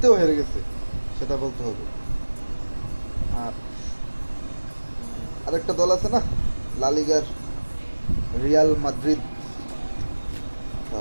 হেরে গেছে, সেটা বলতে হবে। আর আরেকটা দল আছে না, লা লিগার রিয়াল মাদ্রিদ।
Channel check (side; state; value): both; inverted; correlation -1.00